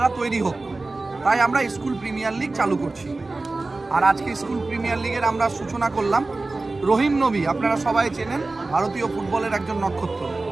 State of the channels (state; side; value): quieter; left; 3.3 dB